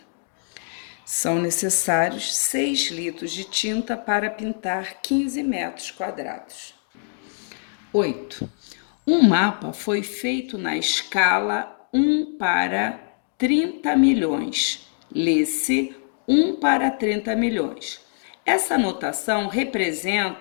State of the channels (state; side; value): silent; right; digital silence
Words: São necessários 6 litros de tinta para pintar 15 metros quadrados. 8. Um mapa foi feito na escala 1 para 30 milhões. Lê-se 1 para 30 milhões. Essa notação